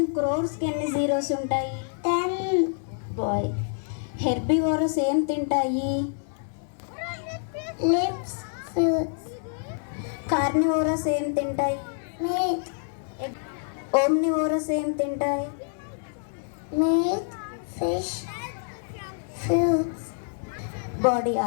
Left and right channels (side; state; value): right; silent; digital silence